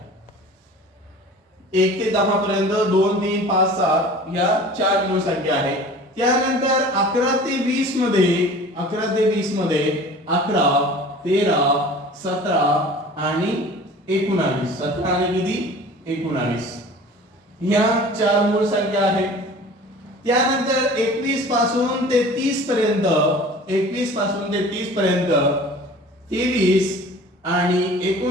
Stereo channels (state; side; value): normal; both; correlation 0.43